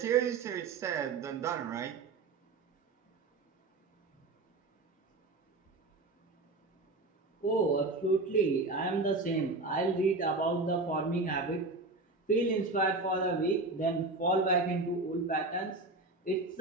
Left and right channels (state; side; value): quieter; left; 3.3 dB